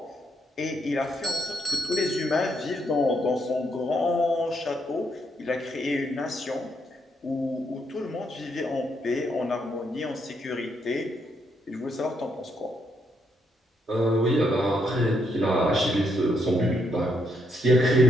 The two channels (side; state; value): both; normal; correlation 0.76